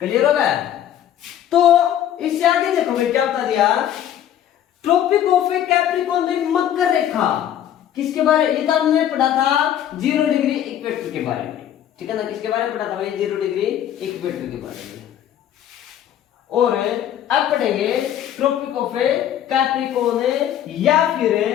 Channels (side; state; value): right; quieter; 10.8 dB